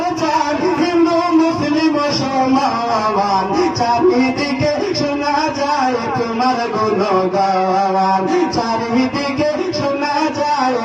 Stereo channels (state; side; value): identical; both; correlation 1.00